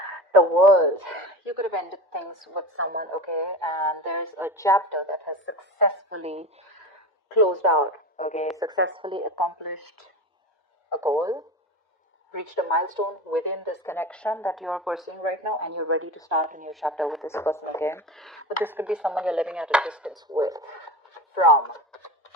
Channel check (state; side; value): normal; both; correlation 0.28